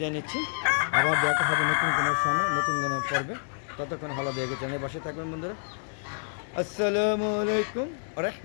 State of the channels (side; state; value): right; silent; digital silence